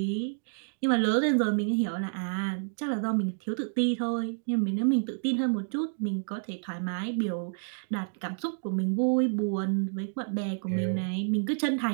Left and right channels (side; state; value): left; silent; digital silence